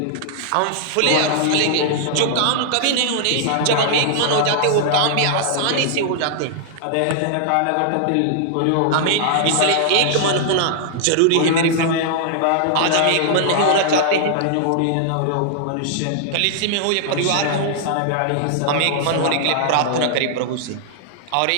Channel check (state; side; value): different; both; correlation -0.01